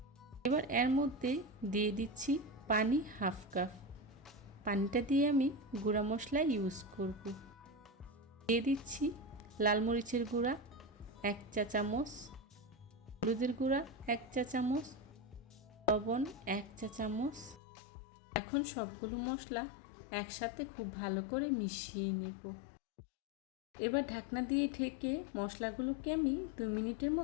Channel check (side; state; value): right; drops out; at 17.6 s